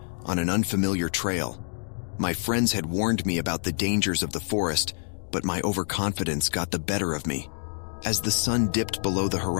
on an unfamiliar trail. My friends had warned me about the dangers of the forest, but my overconfidence got the better of me. As the sun dipped below the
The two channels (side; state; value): right; silent; 60 dB below the other